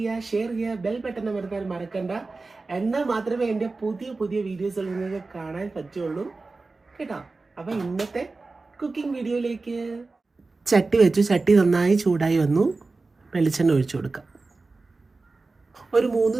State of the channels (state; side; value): quieter; left; 3.7 dB